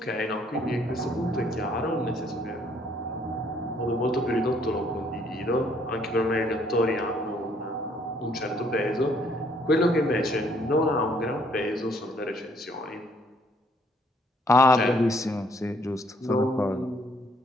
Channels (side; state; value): both; normal; correlation 0.66